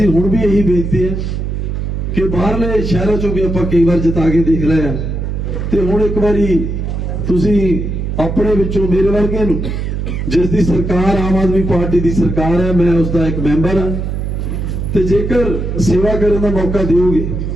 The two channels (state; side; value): noise; right; hum, 3 dB below the sound